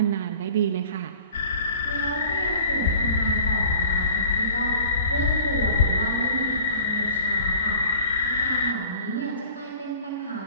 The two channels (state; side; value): inverted; both; correlation -0.45